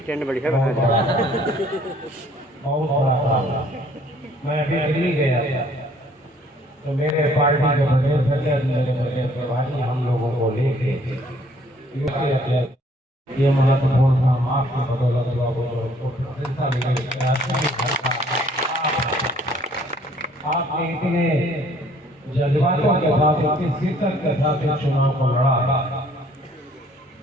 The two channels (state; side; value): normal; both; correlation 0.61